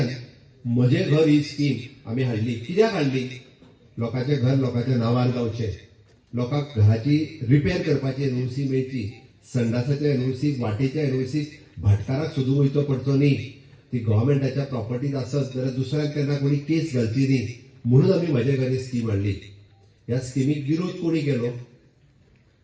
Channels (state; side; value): identical; both; correlation 1.00